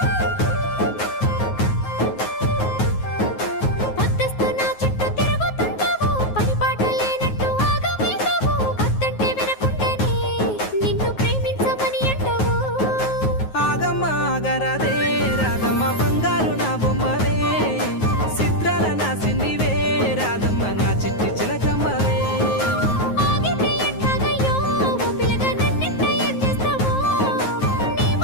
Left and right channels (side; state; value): right; late; 9.4 ms